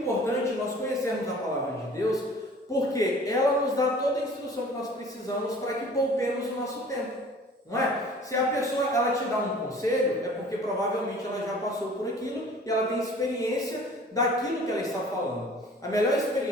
nós conhecermos a palavra de Deus, porque ela nos dá toda a instrução que nós precisamos para que poupemos o nosso tempo. Não é? Se a pessoa ela te dá um conselho, é porque provavelmente ela já passou por aquilo e ela tem experiência daquilo que ela está falando. A melhor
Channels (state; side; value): normal; both; correlation 0.48